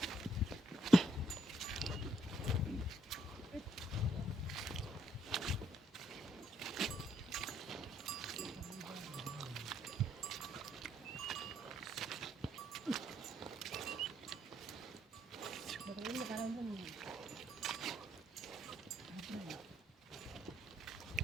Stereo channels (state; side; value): normal; both; correlation 0.71